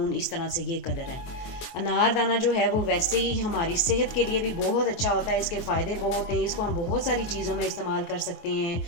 इस तरह से ये कलर है। अनारदाना जो है वो वैसे ही हमारी सेहत के लिए भी बहुत अच्छा होता है, इसके फ़ायदे बहुत हैं। इसको हम बहुत सारी चीज़ों में इस्तेमाल कर सकते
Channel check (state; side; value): late; right; 24 ms